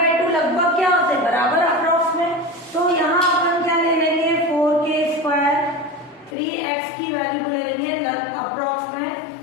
लगभग क्या होते हैं, बराबर अप्रॉक्स में, तो यहाँ अपन क्या ले लेंगे, 4k² 3x की वैल्यू को ले लेंगे अप्रॉक्स में,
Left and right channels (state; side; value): drops out; right; at 6.4 s